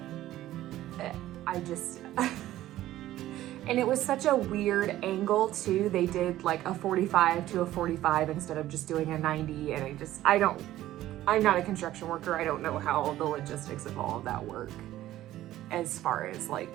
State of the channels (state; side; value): quieter; left; 14.3 dB